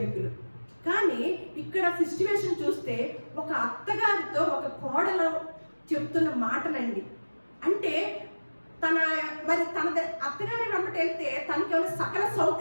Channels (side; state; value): both; inverted; correlation -1.00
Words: కానీ ఇక్కడ సిచ్యువేషన్ చూస్తే ఒక అత్తగారితో ఒక కోడలు చెప్తున్న మాటలండి. అంటే తన అత్తగారి వెంబట వెళ్తే తనకి ఏమైనా సకల